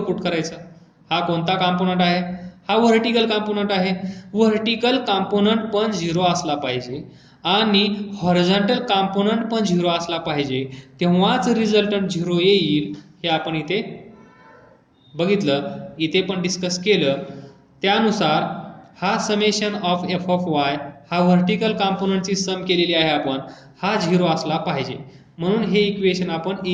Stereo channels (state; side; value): identical; both; correlation 1.00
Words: put करायचा. हा कोणता कॉम्पोनंट आहे? हा व्हर्टिकल कॉम्पोनंट आहे. व्हर्टिकल कॉम्पोनंट पण 0 असला पाहिजे आणि हॉरिझॉन्टल कॉम्पोनंट पण 0 असला पाहिजे, तेव्हाच रिझल्टंट 0 येईल. हे आपण इथे बघितलं, इथे पण डिस्कस केलं. त्यानुसार हा summation of F of Y हा व्हर्टिकल कॉम्पोनंटची सम केलेली आहे आपण, हा 0 असला पाहिजे. म्हणून हे इक्वेशन आपण